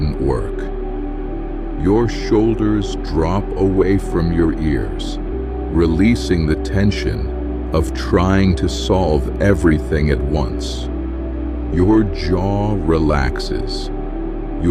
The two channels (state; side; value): identical; both; correlation 1.00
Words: work. Your shoulders drop away from your ears, releasing the tension of trying to solve everything at once. Your jaw relaxes,